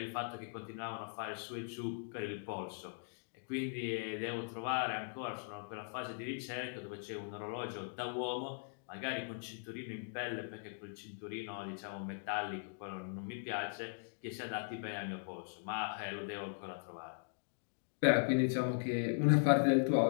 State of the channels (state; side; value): silent; right; digital silence